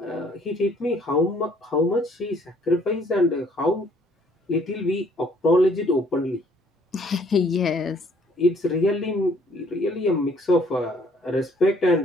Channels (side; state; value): both; normal; correlation 0.61